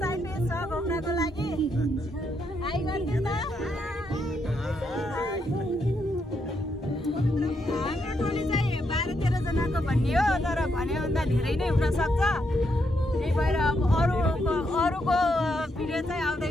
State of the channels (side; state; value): both; normal; correlation 0.79